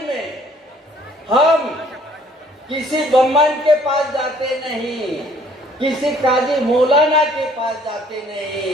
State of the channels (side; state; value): both; normal; correlation 0.59